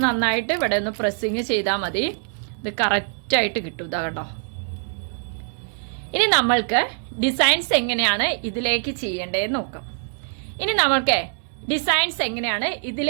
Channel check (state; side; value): silent; left; 56 dB below the other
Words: നന്നായിട്ട് ഇവിടെ ഒന്ന് പ്രസ്സിങ് ചെയ്താൽ മതി. ഇത് കറക്റ്റായിട്ട് കിട്ടും. ഇതാ കണ്ടോ. ഇനി നമ്മൾക്ക് ഡിസൈൻസ് എങ്ങനെയാണ് ഇതിലേക്ക് ചെയ്യേണ്ടതെന്ന് നോക്കാം. ഇനി നമ്മൾക്ക് ഡിസൈൻസ് എങ്ങനെയാണ്